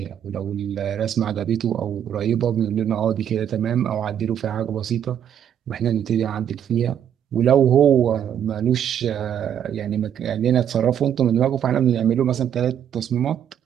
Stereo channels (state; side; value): quieter; left; 9.5 dB